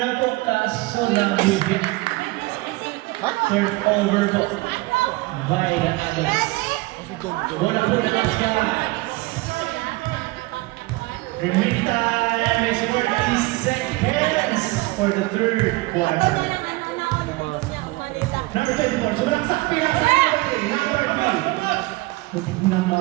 po kaso lang higit. Third over po. By the Agilas. Bola po na mas guys. Remaining time is 40 seconds for the third quarter. Number 24, sumalaksak pinasa number 3. Butik na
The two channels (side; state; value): left; quieter; 22.0 dB